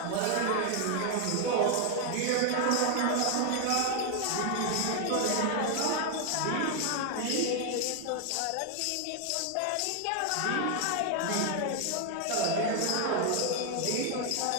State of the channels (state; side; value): different; both; correlation 0.00